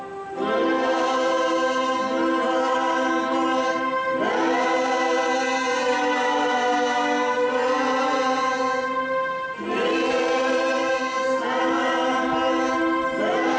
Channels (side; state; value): both; identical; correlation 1.00